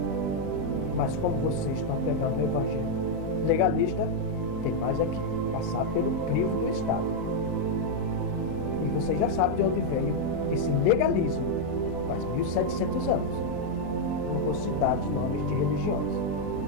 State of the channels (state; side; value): noise; left; hum, 11 dB below the sound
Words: Mas como vocês estão pegando o Evangelho legalista, tem mais aqui, passar pelo crivo do Estado. E vocês já sabem de onde veio esse legalismo, faz 1700 anos. Não vou citar de nomes de religiões.